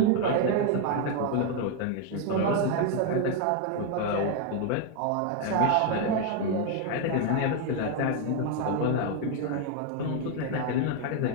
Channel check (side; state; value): both; different; correlation 0.01